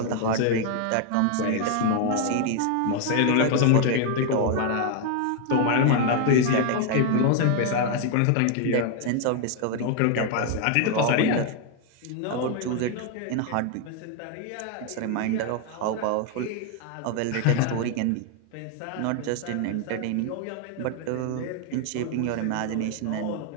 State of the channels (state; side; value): different; both; correlation 0.01